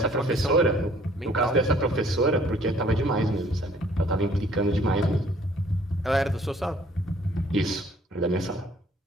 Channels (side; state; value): both; normal; correlation 0.59